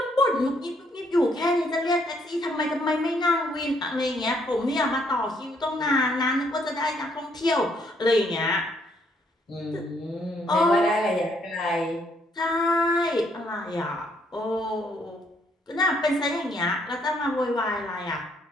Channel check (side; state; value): both; normal; correlation 0.70